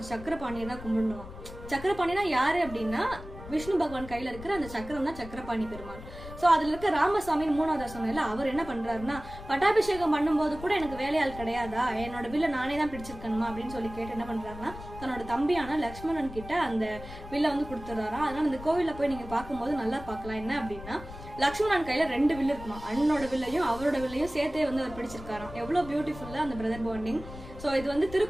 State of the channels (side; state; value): left; noise; rumble, 13 dB below the sound